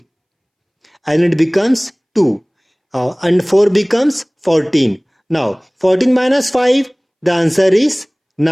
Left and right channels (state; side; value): identical; both; correlation 1.00